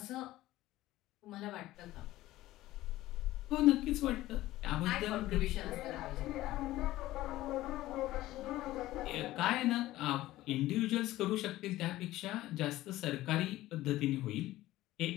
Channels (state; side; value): quieter; right; 16.1 dB